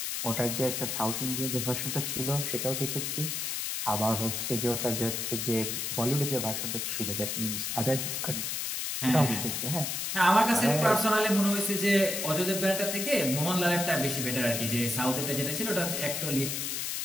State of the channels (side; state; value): left; noise; hiss, 2 dB below the sound